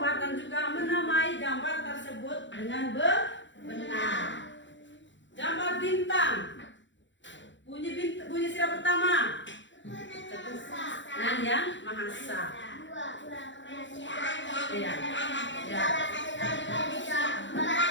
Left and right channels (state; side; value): late; right; 0.54 ms